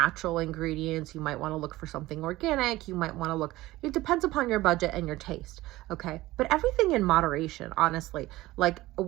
ingredients. You might want to look for something organic. You might want to look, it depends upon your budget and your taste. Okay. But everything in moderation, honestly. Like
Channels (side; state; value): left; quieter; 17.8 dB